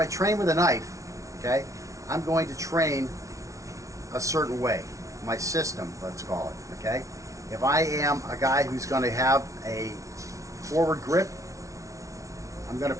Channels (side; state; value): left; late; 0.15 ms